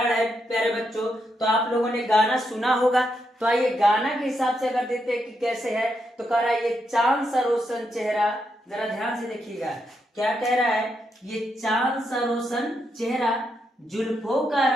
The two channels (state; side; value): normal; both; correlation 0.81